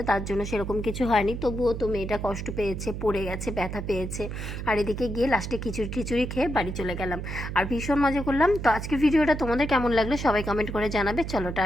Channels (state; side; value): noise; right; hum, 6 dB below the sound